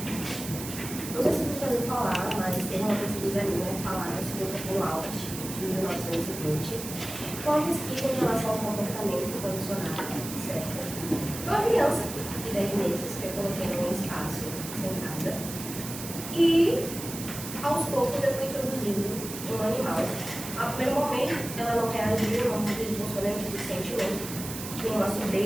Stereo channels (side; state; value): right; noise; hiss, 9 dB below the sound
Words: Não sei se você já ouviu falar, mas teve uma pesquisa minha falada sobre o burnout de 1920. Foi uma pesquisa em relação ao comportamento condicionado, certo? Foi uma criança de 10 meses que eu coloquei num espaço sentada e aos poucos eu fui introduzindo um animal. Ao primeiro momento ela não reagiu, não demonstrou nenhum tipo de sentimento, nenhuma